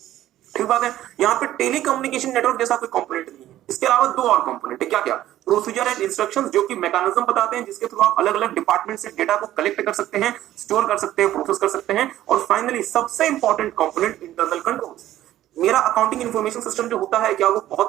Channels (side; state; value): left; quieter; 13.5 dB